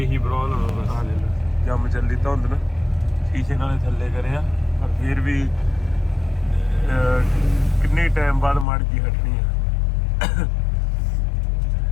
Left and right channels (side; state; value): right; drops out; at 8.7 s